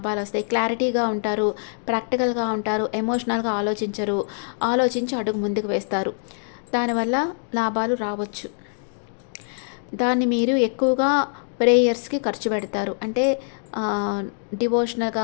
వస్తాయి. క్లారిటీగా ఉంటారు, ప్రాక్టికల్గా ఉంటారు, ఎమోషనల్గా ఆలోచించి అడుగు ముందుకు వేస్తారు. దానివల్ల లాభాలు రావచ్చు. దాన్ని మీరు ఎక్కువగా ప్రేయర్స్కి ఖర్చు పెడతారు. అంటే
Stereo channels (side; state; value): right; silent; digital silence